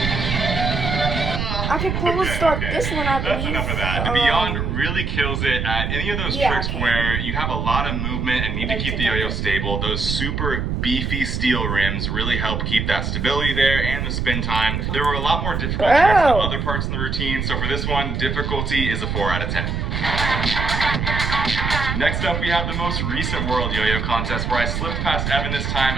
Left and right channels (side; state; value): right; noise; rumble, 1 dB below the sound